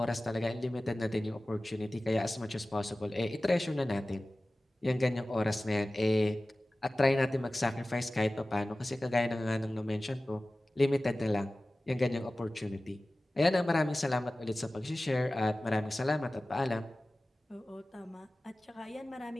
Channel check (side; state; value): both; normal; correlation 0.97